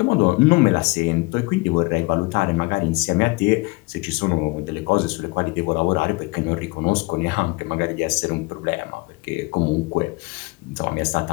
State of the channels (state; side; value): quieter; right; 25.3 dB